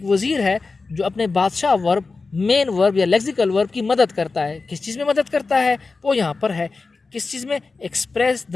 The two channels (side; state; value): right; quieter; 4.0 dB